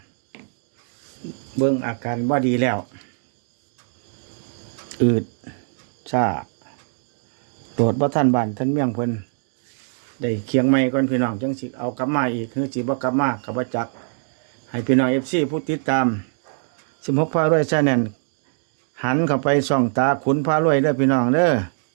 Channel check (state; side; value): silent; left; digital silence